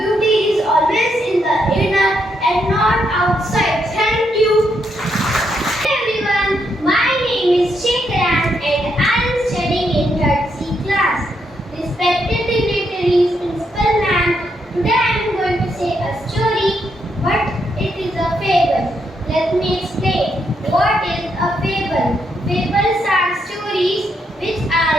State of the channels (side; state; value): both; normal; correlation 0.78